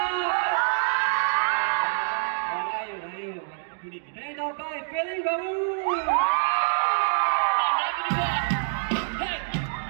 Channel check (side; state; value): left; silent; digital silence